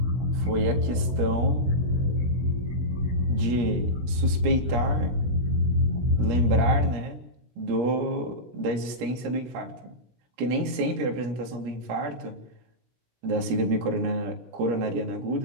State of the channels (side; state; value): left; late; 17 ms